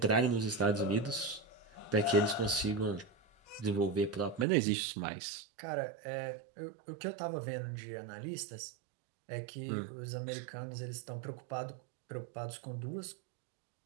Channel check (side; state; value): left; drops out; at 4.5 s